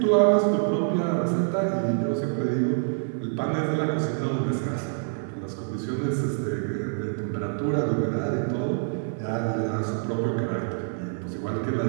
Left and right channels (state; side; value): silent; left; 61 dB below the other